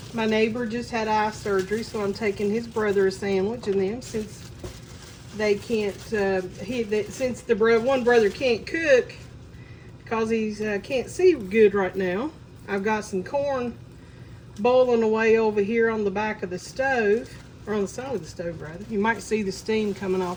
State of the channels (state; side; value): identical; both; correlation 1.00